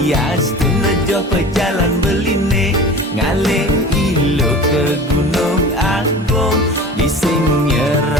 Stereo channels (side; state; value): both; normal; correlation 0.38